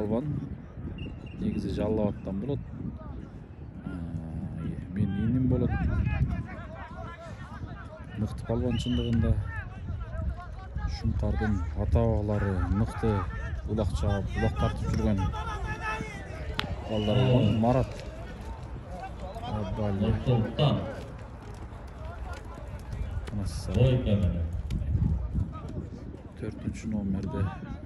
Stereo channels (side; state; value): both; identical; correlation 1.00